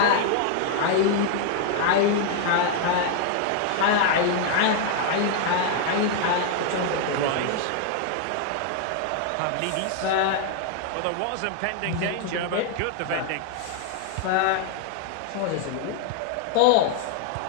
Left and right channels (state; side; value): different; both; correlation 0.00